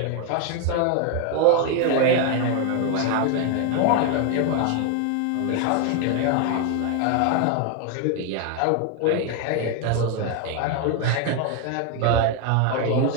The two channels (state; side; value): different; both; correlation 0.01